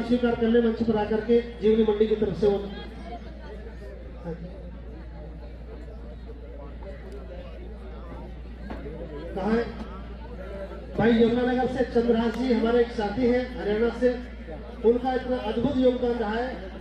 स्वीकार करने मंच पर आकर के जीवनी मंडी की तरफ से वो कहा है भाई यमुनानगर से चंद्रहास जी हमारे एक साथी हैं हरियाणा से, उनका इतना अद्भुत योगदान रहा है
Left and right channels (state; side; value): identical; both; correlation 1.00